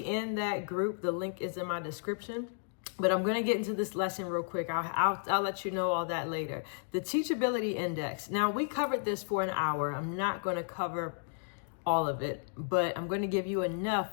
in that group, the link is in my description. But I'm going to get into this lesson real quick. I'll let you know all that later. The Teachability Index. Now, we covered this for an hour. I'm not going to cover all of it, but I'm going to give you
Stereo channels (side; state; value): right; silent; digital silence